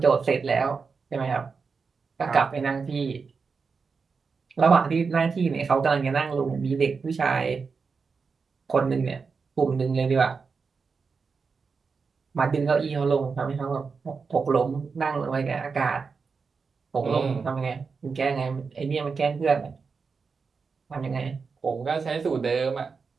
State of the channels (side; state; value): left; quieter; 5.1 dB